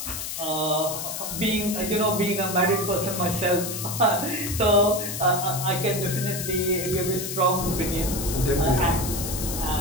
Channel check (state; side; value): noise; left; hiss, 5 dB below the sound